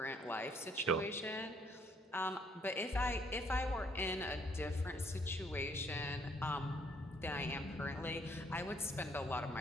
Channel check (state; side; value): normal; both; correlation 0.66